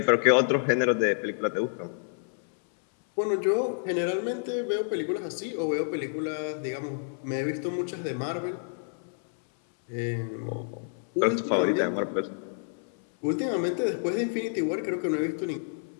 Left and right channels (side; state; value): right; silent; 59 dB below the other